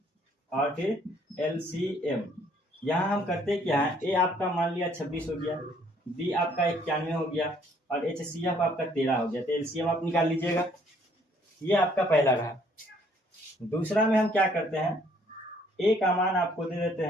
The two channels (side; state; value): both; normal; correlation 0.63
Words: और फिर LCM। यहाँ हम करते क्या है, A आपका मान लिया 26 हो गया, B आपका 91 हो गया और HCF आपका 13 हो गया। तो LCM आप निकाल लीजिएगा। ये आपका पहला रहा। दूसरा में हम क्या करते हैं, A का मान आपको दे देते